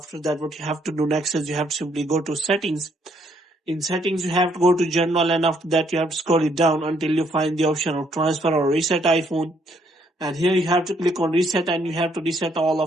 that, what you have to do next is you have to simply go to settings. In settings, you have to go to general, and after that, you have to scroll it down until you find the option of transfer or reset iPhone. And here you have to click on reset, and you have to reset all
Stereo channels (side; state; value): both; normal; correlation 0.69